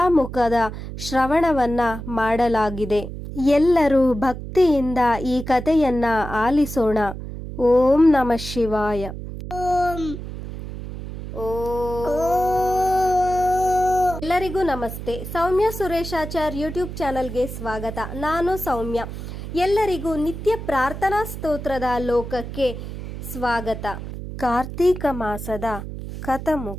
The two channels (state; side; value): noise; right; hum, 9 dB below the sound